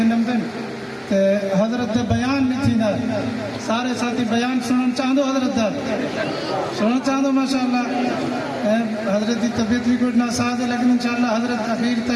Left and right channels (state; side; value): identical; both; correlation 1.00